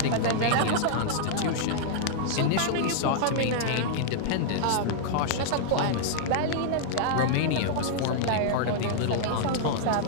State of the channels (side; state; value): both; different; correlation -0.01